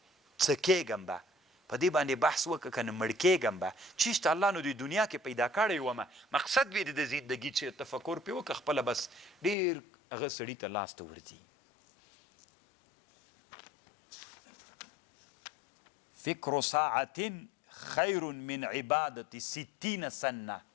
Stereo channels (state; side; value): drops out; right; at 9.6 s